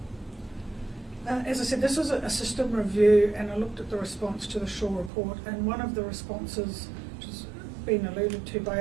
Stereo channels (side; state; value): left; drops out; at 5.1 s